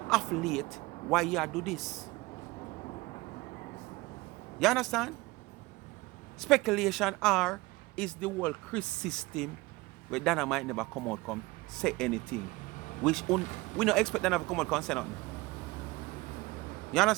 off late why you do this. You understand? Speculation or is the whole Chris system where Dana might never come out come say anything. We don't expect Dana to come out and say nothing. You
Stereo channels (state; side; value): quieter; left; 21.9 dB